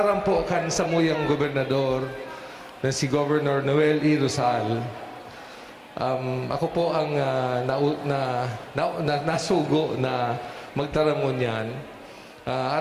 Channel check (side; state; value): both; identical; correlation 1.00